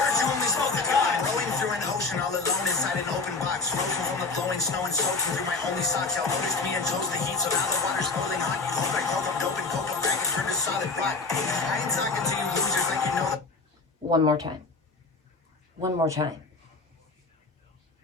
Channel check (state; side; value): quieter; right; 3.9 dB